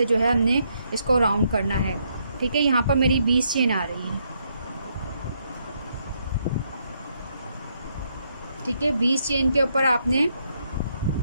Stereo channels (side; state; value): both; inverted; correlation -0.76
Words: जो है हमने इसको राउंड करना है। ठीक है, यहाँ पर मेरी 20 चेन आ रही है। ठीक है, 20 चेन के ऊपर आपने